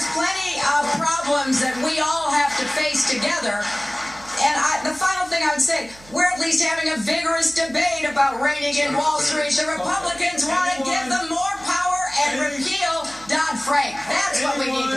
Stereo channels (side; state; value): right; noise; hum, 23 dB below the sound